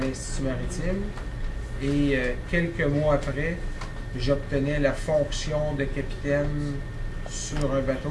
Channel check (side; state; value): both; identical; correlation 1.00